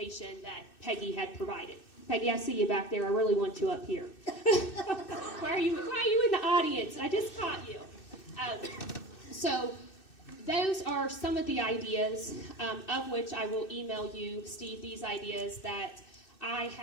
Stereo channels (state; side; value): late; right; 2.6 ms